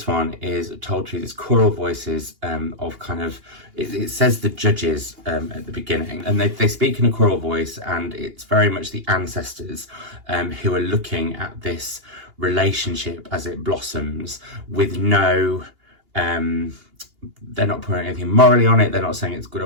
one is told through these choral voices of kind of, it says the judges at the beginning, and they speak in a choral voice, and it's very much the ancestors who are looking at this relationship as it blossoms with no... they're not putting anything morally on it. They're not saying it's good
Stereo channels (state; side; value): late; left; 2.8 ms